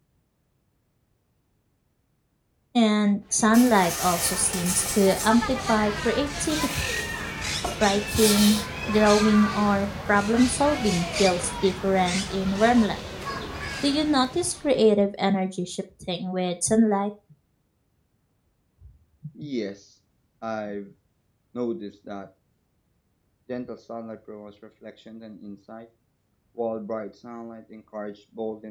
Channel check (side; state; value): both; identical; correlation 1.00